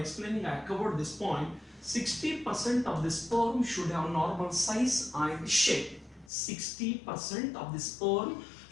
I covered this point. 60% of the sperm should have normal size and shape. 60% of the sperm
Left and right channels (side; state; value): right; drops out; at 6.3 s